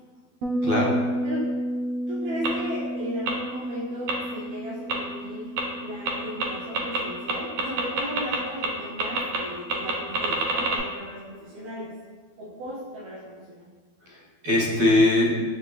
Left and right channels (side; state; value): left; late; 12 ms